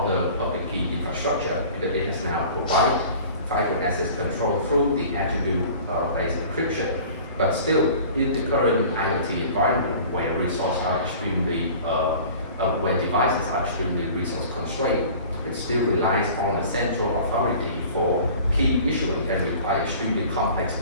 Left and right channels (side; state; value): both; inverted; correlation -0.44